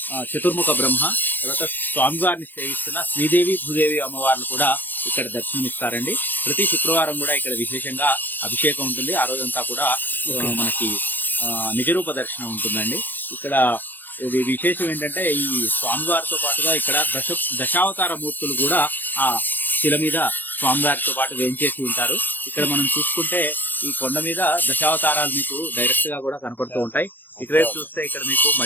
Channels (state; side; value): late; right; 0.089 ms